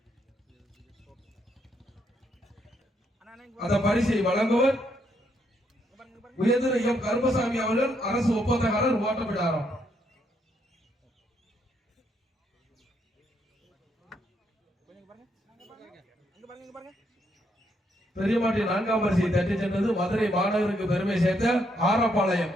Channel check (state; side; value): normal; both; correlation 0.75